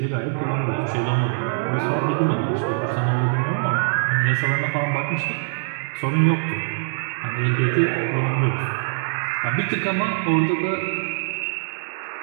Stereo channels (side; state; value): left; silent; digital silence